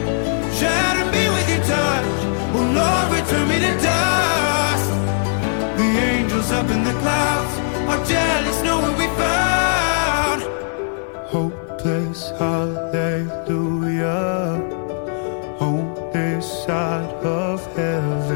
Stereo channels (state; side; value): silent; right; 63 dB below the other